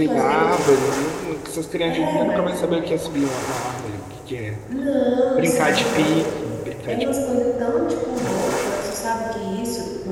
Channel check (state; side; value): identical; both; correlation 1.00